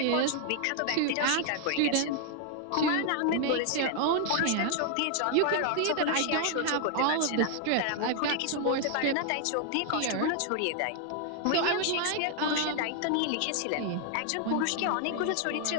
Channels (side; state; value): both; different; correlation 0.00